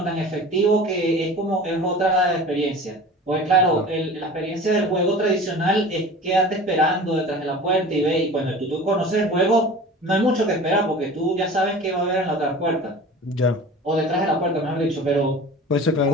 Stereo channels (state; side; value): normal; both; correlation 0.39